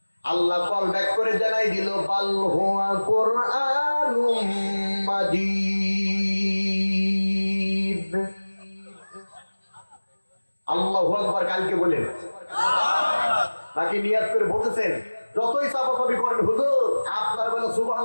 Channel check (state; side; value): inverted; both; correlation -1.00